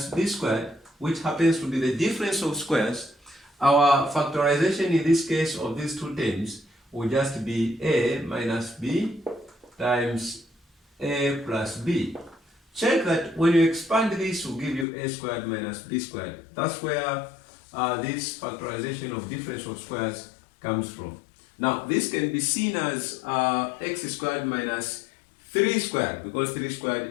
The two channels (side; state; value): right; drops out; at 14.9 s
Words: b squared, which happens to be the difference of squares, our factorization in this case of these two terms will just be a minus b times a plus b. Check that when you expand this, will give you a squared minus b squared. That's where this factorization of difference of squares comes from. Now, this can be seen as x squared minus 3 squared, because 3